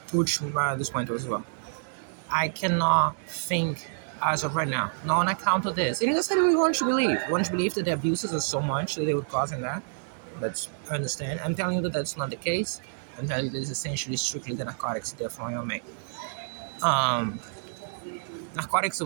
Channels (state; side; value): silent; left; digital silence